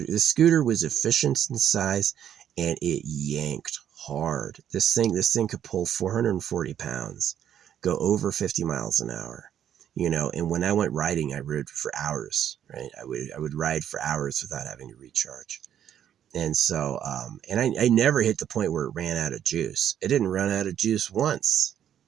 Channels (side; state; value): left; quieter; 9.9 dB